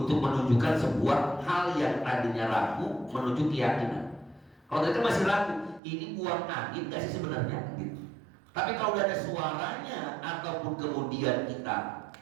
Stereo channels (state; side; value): drops out; left; at 5.8 s